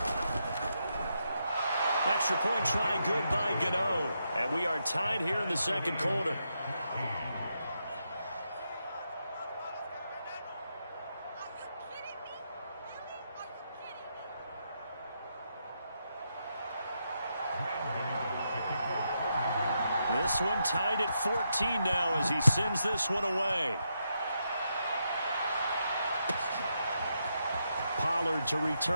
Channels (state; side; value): inverted; both; correlation -0.82